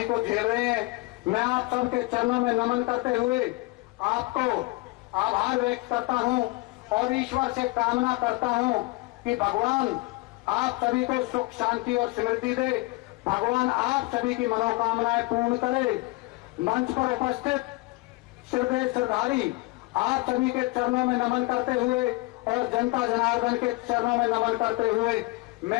को झेल रहे हैं। मैं आप सबके चरणों में नमन करते हुए आपको आभार व्यक्त करता हूं और ईश्वर से कामना करता हूं कि भगवान आप सभी को सुख शांति और समृद्धि दे, भगवान आप सभी की मनोकामनाएं पूर्ण करे। मंच पर उपस्थित श्रद्धाधारी आप सभी के चरणों में नमन करते हुए और जनता जनार्दन के चरणों में नमन करते हुए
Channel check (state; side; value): quieter; right; 22.9 dB